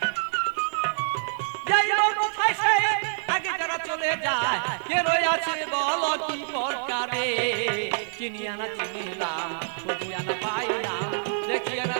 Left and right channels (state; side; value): silent; left; 61 dB below the other